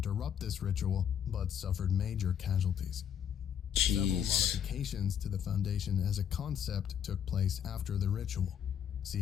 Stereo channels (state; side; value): quieter; right; 8.8 dB